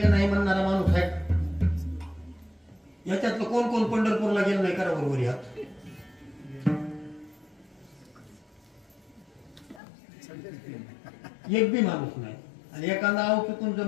नाही म्हणणारा माणूस आहे याच्यातलं कोण कोण पंढरपूरला गेलं नाही? करा बरोबर यात. एक बी माणूस नाही. आणि एखादा आव चुकून जर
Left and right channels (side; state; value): right; drops out; at 9.8 s